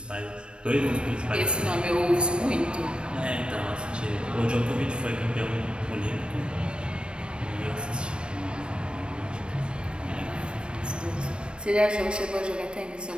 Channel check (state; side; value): late; left; 0.056 ms